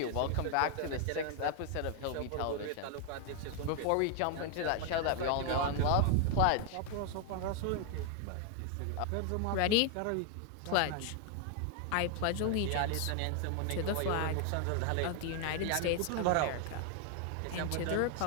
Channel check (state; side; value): different; both; correlation 0.00